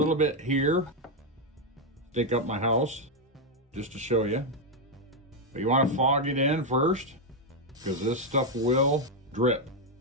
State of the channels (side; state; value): both; normal; correlation 0.03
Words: bit here, stick up my house, just to show you. But you want to fog it in first, because this stuff will drip